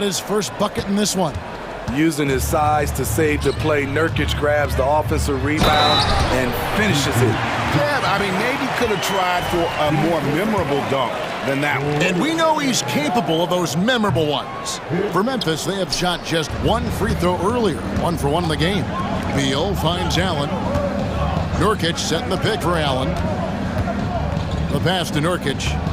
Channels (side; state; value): both; identical; correlation 1.00